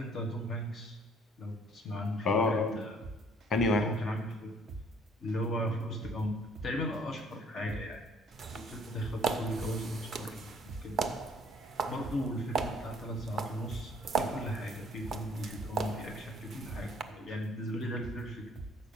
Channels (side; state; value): both; normal; correlation 0.58